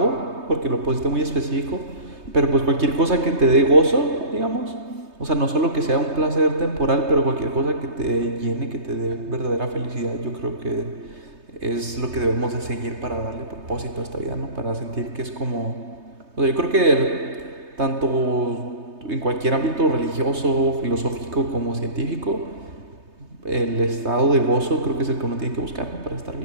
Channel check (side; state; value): left; late; 3.2 ms